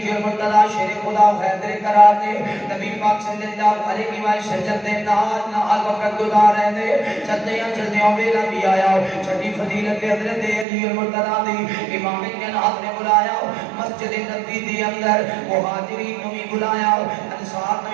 المرتضی شیر خدا حیدر کرام نے نبی پاک صلی اللہ علیہ وسلم دے نال وقت گزار رہے نے چلدے ویلا بھی آیا چھٹی فضیلت حضرت علی المرتضی دی امام کائنات نے بلایا مسجد نبوی دے اندر مہاجرین کو بلایا انصار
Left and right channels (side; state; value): left; drops out; at 10.7 s